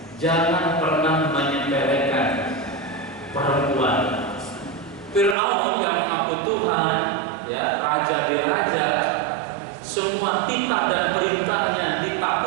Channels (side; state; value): left; drops out; at 5.4 s